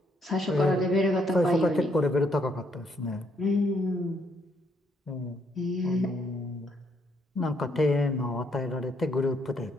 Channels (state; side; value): normal; both; correlation 0.72